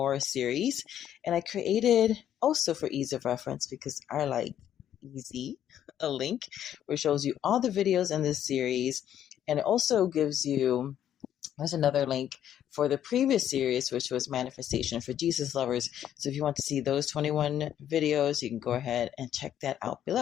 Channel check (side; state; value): right; quieter; 10.5 dB